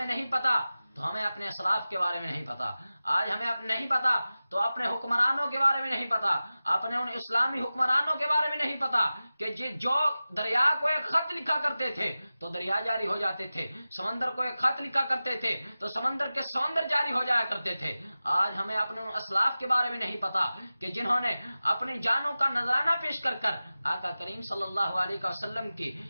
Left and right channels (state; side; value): inverted; both; correlation -0.96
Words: نہیں پتا تو ہمیں اپنے اسلاف کے بارے میں نہیں پتا. آج ہمیں نہیں پتا تو اپنے حکمرانوں کے بارے میں نہیں پتا. اپنے ان اسلامی حکمرانوں کے بارے میں نہیں پتا کہ جو دریا کو ایک خط لکھا کرتے تھے تو دریا جاری ہو جاتے تھے. سمندر کو ایک خط لکھا کرتے تھے تو سمندر کے سمندر جاری ہو جایا کرتے تھے. آج ہمیں اپنے ان اسلاف کے بارے میں نہیں پتا کہ جنہوں نے اپنی جانوں کا نذرانہ پیش کر کر آقا کریم صلی اللہ علیہ وسلم کی